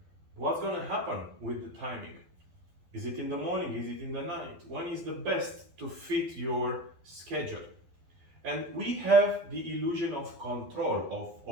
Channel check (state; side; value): late; left; 12 ms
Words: What's going to happen with the timing? Is it in the morning? Is it in the night? When is the best to fit your schedule? And we have the illusion of control